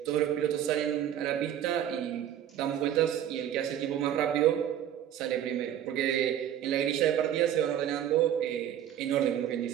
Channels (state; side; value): quieter; left; 10.5 dB